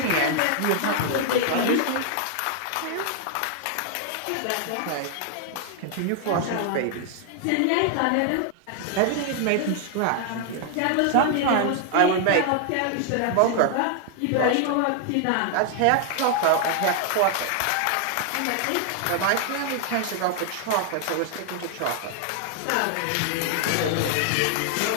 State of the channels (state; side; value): different; both; correlation 0.00